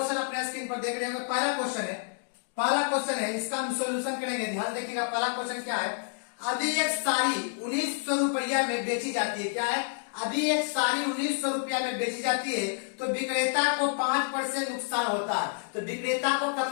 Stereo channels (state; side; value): silent; right; 59 dB below the other